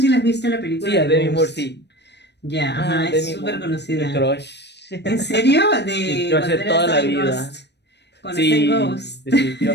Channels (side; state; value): right; late; 0.50 ms